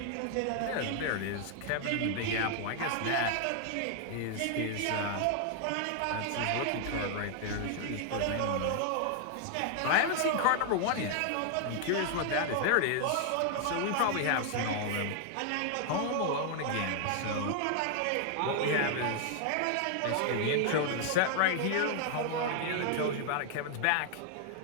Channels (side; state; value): both; different; correlation 0.00